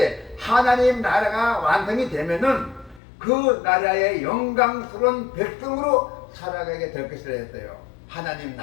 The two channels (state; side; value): drops out; right; at 3.0 s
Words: 하나님 나라가 완성이 되면은 그 나라의 영광스러운 백성으로 살아가게 될 것이라 했어요. 하나님